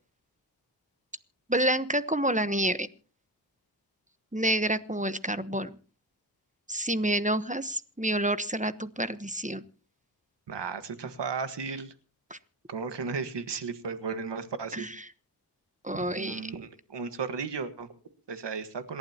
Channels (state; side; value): normal; both; correlation 0.20